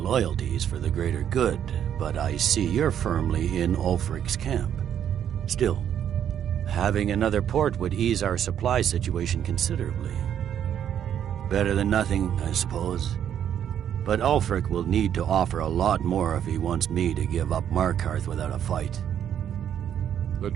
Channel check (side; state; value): left; quieter; 9.5 dB